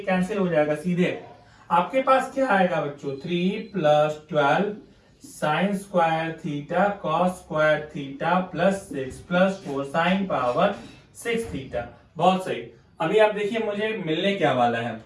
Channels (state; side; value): identical; both; correlation 1.00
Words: कैंसिल हो जाएगा सीधे। आपके पास क्या आएगा बच्चों, 3 plus 12 sine square theta cos square theta plus 6 plus 4 sine power 6 theta. बहुत सही। अभी आप देखिए मुझे मिलने क्या वाला है,